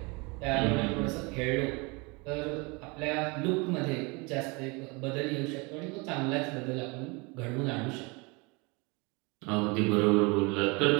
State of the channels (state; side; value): quieter; left; 28.2 dB